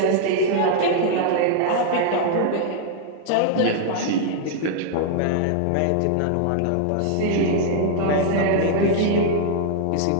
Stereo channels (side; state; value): both; different; correlation -0.01